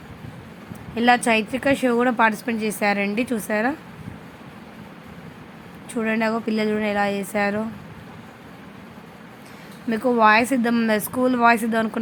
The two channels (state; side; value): identical; both; correlation 1.00